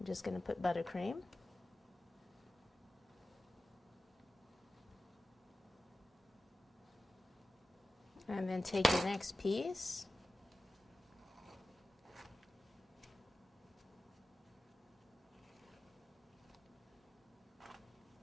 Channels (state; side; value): normal; both; correlation 0.94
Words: just going to put buttercream. And then take your next piece.